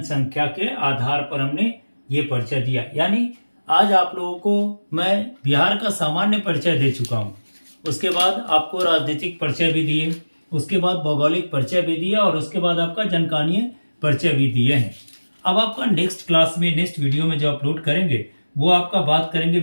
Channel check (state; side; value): inverted; both; correlation -1.00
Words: के आधार पर हमने ये परिचय दिया। यानी आज आप लोगों को मैं बिहार का सामान्य परिचय दे चुका हूँ। उसके बाद आपको राजनीतिक परिचय भी दिए, उसके बाद भौगोलिक परिचय भी दिया, और उसके बाद आपका जनकानीय परिचय भी दिए हैं। अब आपका नेक्स्ट क्लास में, नेक्स्ट वीडियो में जो अपलोड करेंगे वो आपका बात करेंगे